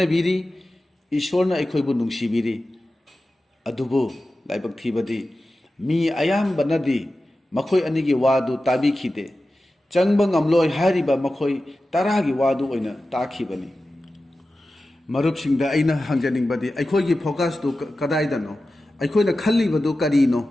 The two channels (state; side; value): normal; both; correlation 0.94